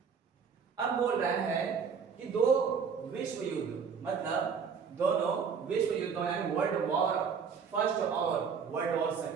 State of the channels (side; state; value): left; quieter; 6.2 dB